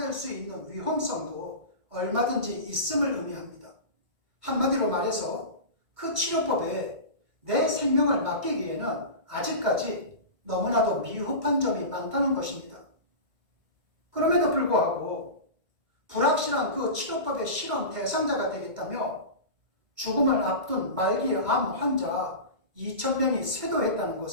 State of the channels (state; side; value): late; left; 1.3 ms